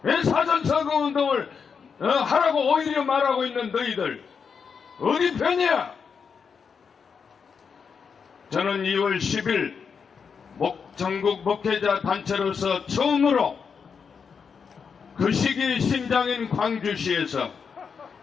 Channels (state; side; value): quieter; right; 6.1 dB